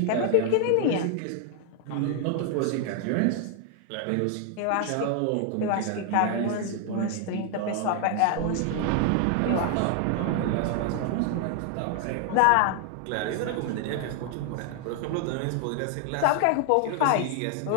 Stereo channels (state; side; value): different; both; correlation 0.00